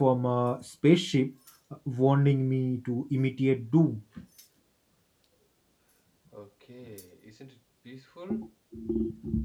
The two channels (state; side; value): identical; both; correlation 1.00